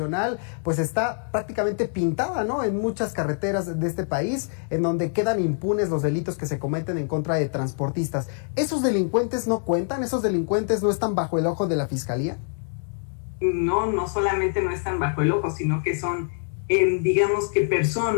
pues está prácticamente pintada, ¿no? En muchas carreteras de este país, en donde quedan impunes los delitos que se cometen en contra de transportistas. ¿Esos delincuentes no cuentan? ¿Esos delincuentes no están bajo el ojo de la Fiscalía? No solamente no están bajo el ojo, sino que son digamos que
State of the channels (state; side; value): silent; right; 62 dB below the other